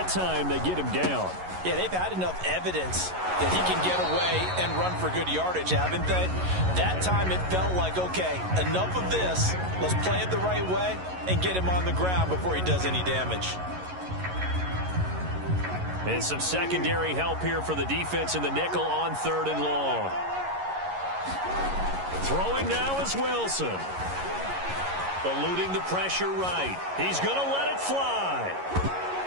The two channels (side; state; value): left; late; 11 ms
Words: time, they get him down. Yeah, they've had enough evidence that he can get away and run for good yardage, haven't they? That time it felt like, okay, enough of this. Let's play it the right way and get him on the ground before he does any damage. And some secondary help here for the defense in the nickel on third and long. Throwing now is Wilson. Eluding the pressure right. He's going to let it fly.